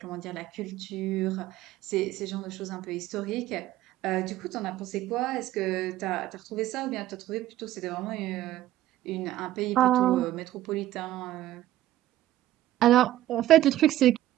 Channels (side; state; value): left; quieter; 14.2 dB